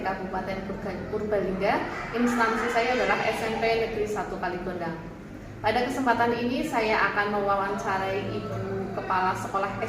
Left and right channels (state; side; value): identical; both; correlation 1.00